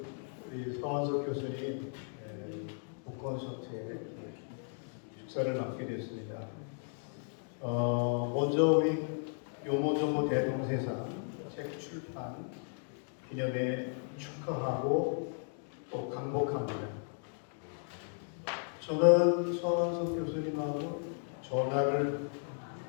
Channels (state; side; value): silent; right; 54 dB below the other